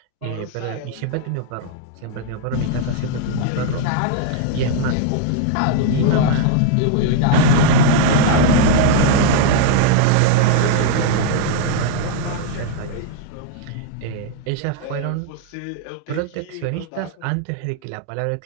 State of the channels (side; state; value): both; different; correlation 0.00